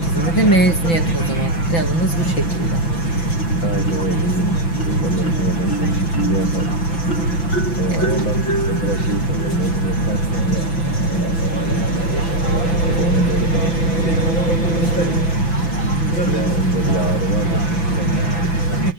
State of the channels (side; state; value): right; late; 6.0 ms